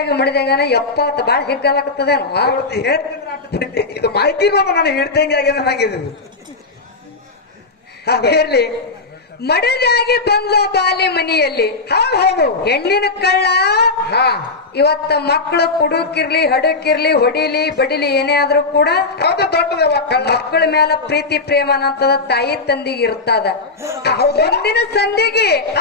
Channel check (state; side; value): quieter; right; 3.8 dB